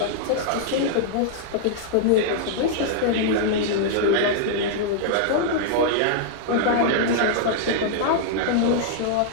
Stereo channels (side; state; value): both; different; correlation -0.02